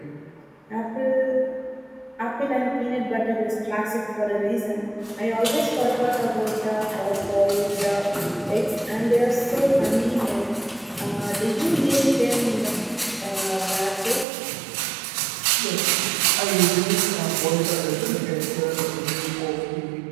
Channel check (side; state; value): left; drops out; at 14.2 s